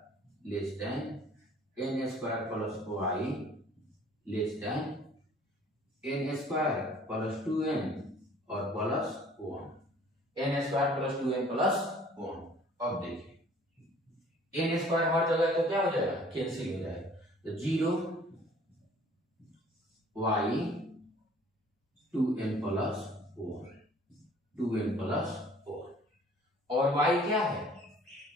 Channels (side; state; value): both; normal; correlation 0.53